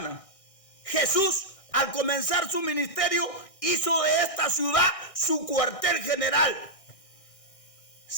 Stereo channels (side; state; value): right; late; 1.6 ms